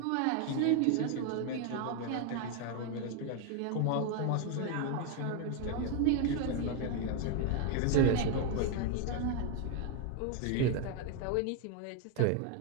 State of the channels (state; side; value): different; both; correlation 0.01